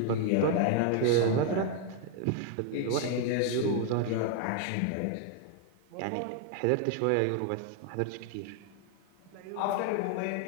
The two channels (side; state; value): both; different; correlation 0.00